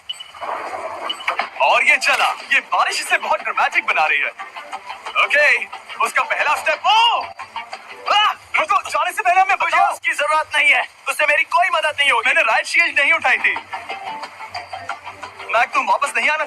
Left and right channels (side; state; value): both; identical; correlation 1.00